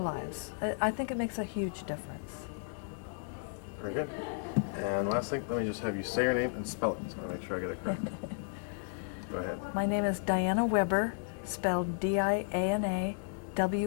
I think it makes a huge difference. Very good. And last thing, let me just have you say your name and spell it, so I make sure I get it correct. Go ahead. My name is Diana Weber, spelled D-I-A-N-A-W-E-B-E-R,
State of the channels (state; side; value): silent; right; digital silence